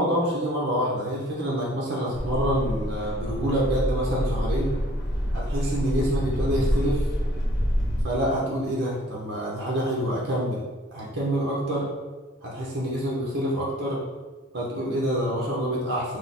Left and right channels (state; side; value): normal; both; correlation 0.54